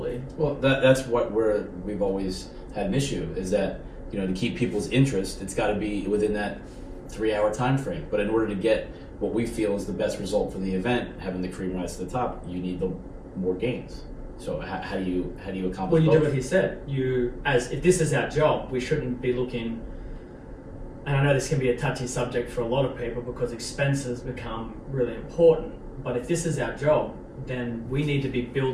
Well, that's what we've always had an issue, is that, you know, to keep people's interest, it's got to be within that 3-hour time frame. But in order to get what we feel is the best result for the event, having the cream rise to the top, you need the more games. So how do you accomplish? Well, you both? do what he said. If this is our job, we shouldn't be looking. And I know this can be a touchy subject for a lot of people because expenses become really important. But if this is our job, then we need to be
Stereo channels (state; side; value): identical; both; correlation 1.00